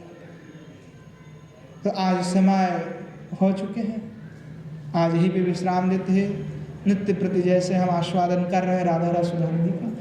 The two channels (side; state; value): both; identical; correlation 1.00